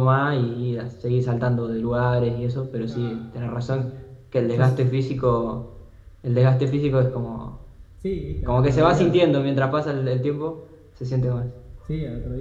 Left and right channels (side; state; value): both; identical; correlation 1.00